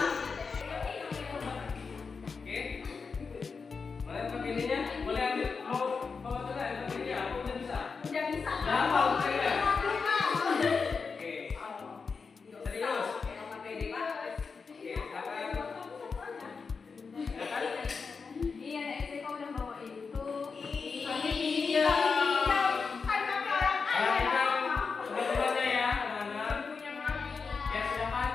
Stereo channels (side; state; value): right; quieter; 5.1 dB